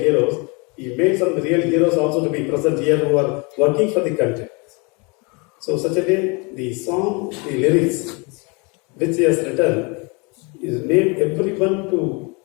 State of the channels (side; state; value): right; quieter; 30.4 dB